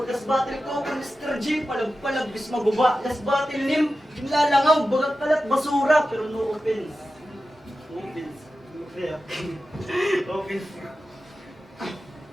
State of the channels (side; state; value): both; normal; correlation 0.92